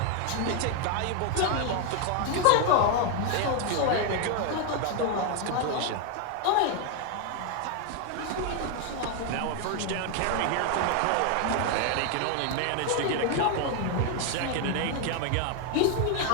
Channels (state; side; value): different; both; correlation 0.01